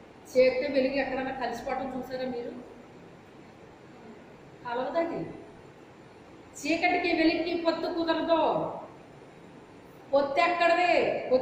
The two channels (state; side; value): identical; both; correlation 1.00